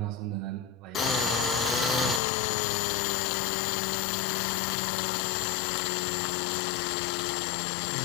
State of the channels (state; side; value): drops out; right; at 2.2 s